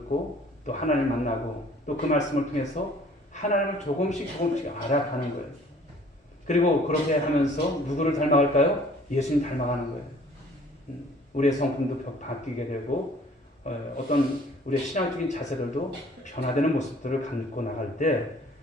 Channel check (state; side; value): normal; both; correlation 0.54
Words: 또 하나님을 만나고 또 그 말씀을 통해서 하나님을 조금씩 알아가는 거예요. 그리고 그렇게 하면서 누구를 닮아갈까요? 예수님 닮아가는 거예요. 우리의 성품도 바뀌게 되고 어떤 우리의 신앙적인 자세들도 변화되는 모습들을 갖고 나갈 때